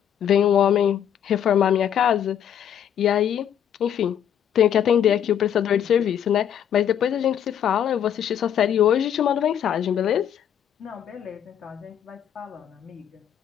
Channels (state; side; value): quieter; right; 9.4 dB